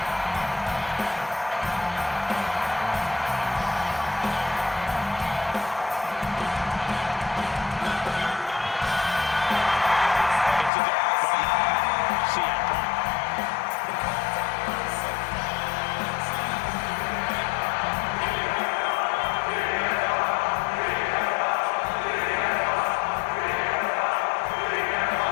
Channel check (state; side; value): drops out; right; at 10.7 s